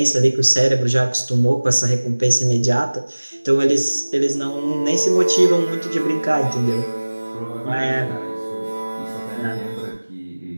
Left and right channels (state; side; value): inverted; both; correlation -1.00